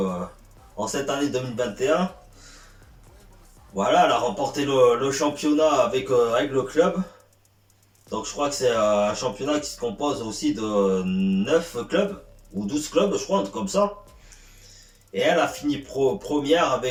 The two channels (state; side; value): identical; both; correlation 1.00